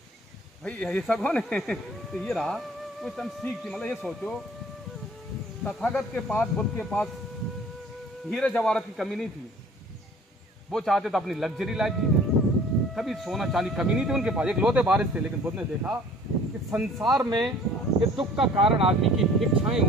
भाई ये सब कौन है? तो ये रहा कुछ हम सीख थी। मतलब ये सोचो, तथागत के पास, बुद्ध के पास हीरे जवाहरात की कमी नहीं थी। वो चाहते तो अपनी लग्जरी लाइफ जीते, कभी सोना चांदी कमी नहीं थी उनके पास, एक लोटे बारिश थे। लेकिन बुद्ध ने देखा कि संसार में ये दुख का कारण आदमी की इच्छाएं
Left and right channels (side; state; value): both; normal; correlation 0.51